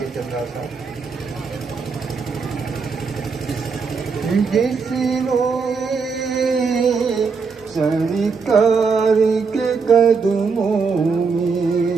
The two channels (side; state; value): left; quieter; 5.1 dB